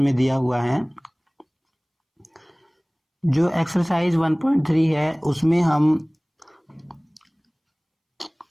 में दिया हुआ है। जो एक्सरसाइज 1.3 है उसमें हम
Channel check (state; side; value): identical; both; correlation 1.00